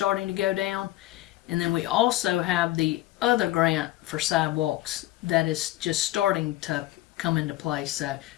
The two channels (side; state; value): right; quieter; 16.2 dB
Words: to go down, and then we also have the other grant for sidewalks that is just starting to come into place. So